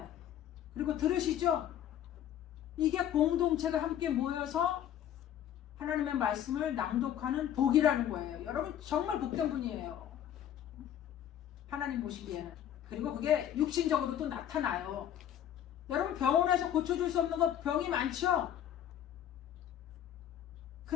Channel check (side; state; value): right; quieter; 10.5 dB